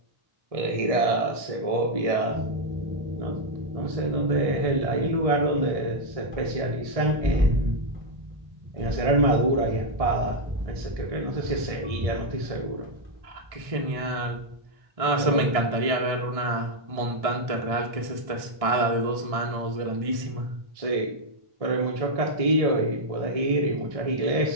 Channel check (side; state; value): left; late; 1.6 ms